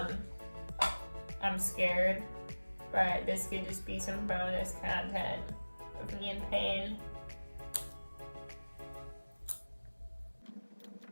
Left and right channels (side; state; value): both; inverted; correlation -1.00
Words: scared, but this could just be some bonus content of me in pain.